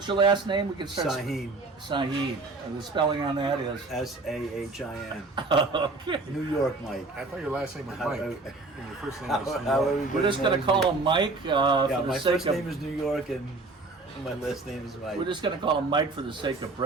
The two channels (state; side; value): quieter; left; 3.4 dB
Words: your last name? We can start. Sahin. And the spelling on that is S-A-H-I-N. Okay. New York, Mike. I thought your last name was Mike. And your first name was New York. We're just going to call him Mike. My first name is New York, and my last name is Mike. We're just going to call him Mike for the sake of